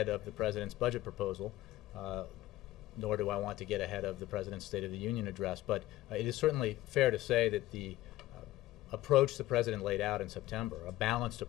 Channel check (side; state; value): right; quieter; 16.2 dB